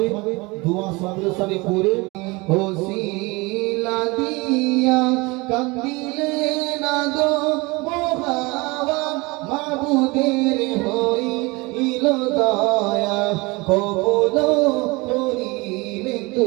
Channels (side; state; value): left; quieter; 24.7 dB